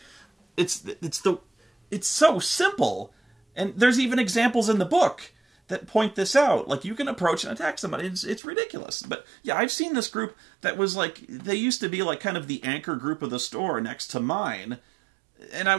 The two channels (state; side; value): drops out; left; at 8.4 s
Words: It's so simple. And there's even examples in the book that point this out. Like, you can approach and attack somebody. It's ridiculous. But yeah, I've seen this group that was like, they used to be like kind of the anchor group of the store next to mine. And I